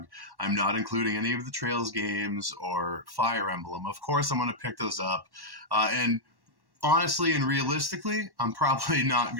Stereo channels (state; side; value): late; left; 1.1 ms